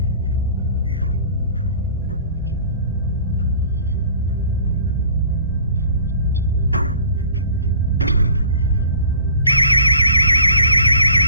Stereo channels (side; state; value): both; inverted; correlation -0.50